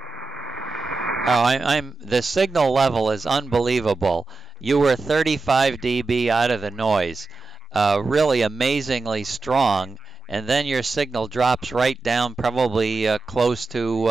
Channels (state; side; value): quieter; left; 4.0 dB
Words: Oh, the signal level is unbelievable. You were 35 dB out of the noise, really amazingly strong, and then your signal drops right down, probably close